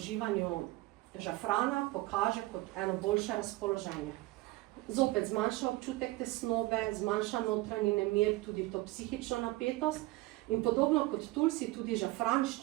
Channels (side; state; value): left; quieter; 19.6 dB